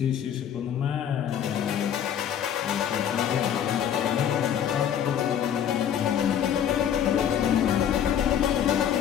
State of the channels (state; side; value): quieter; right; 9.3 dB